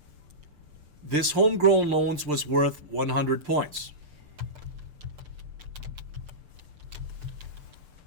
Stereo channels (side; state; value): left; late; 6.7 ms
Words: this homegrown loans was worth 100 points.